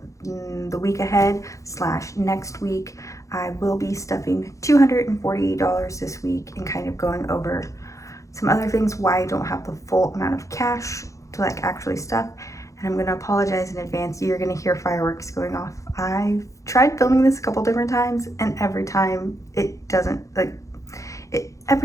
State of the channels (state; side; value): late; right; 0.15 ms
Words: the week ahead slash next week. I will be stuffing $248 this week and kind of going over some other things why I don't have the full amount of cash to actually stuff. And I'm going to apologize in advance. You're going to hear fireworks going off. I've tried filming this a couple different times, and every time it doesn't